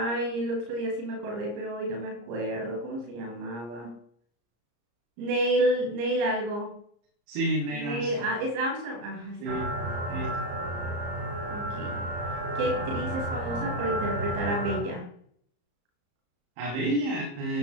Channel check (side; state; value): left; late; 34 ms